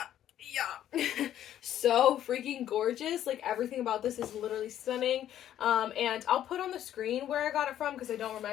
Yeah. So freaking gorgeous. Like everything about this is literally stunning. And I'll put on the screen where I got it from because I don't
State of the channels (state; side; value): quieter; right; 11.3 dB